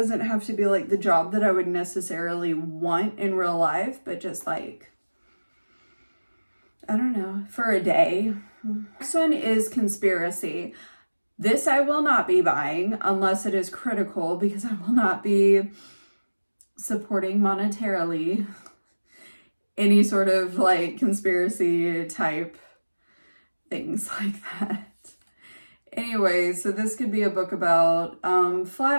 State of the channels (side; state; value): both; inverted; correlation -1.00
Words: have to be like the job that I would necessarily want in real life, but just like, I don't know, for a day. Next one is Conspiracy. This I will not be buying unless it is critical, because I will not be supporting monetarily any sort of like conspiracy type things like that. Anyway, so this could be a book about